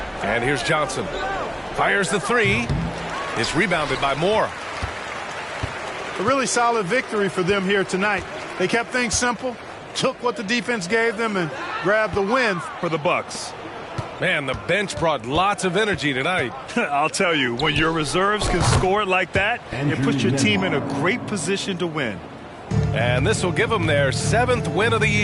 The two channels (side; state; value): both; identical; correlation 1.00